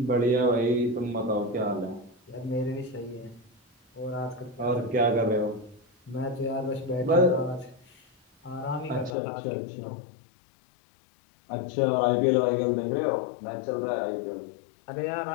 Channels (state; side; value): drops out; right; at 9.1 s